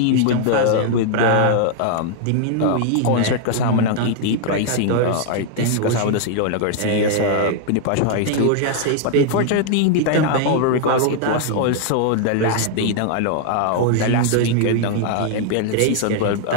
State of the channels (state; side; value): different; both; correlation 0.00